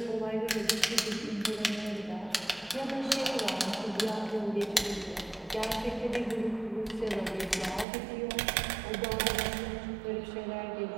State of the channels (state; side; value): drops out; left; at 7.9 s